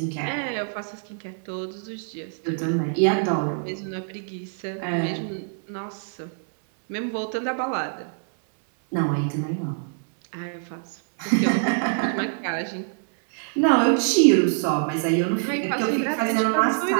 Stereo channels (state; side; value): silent; left; digital silence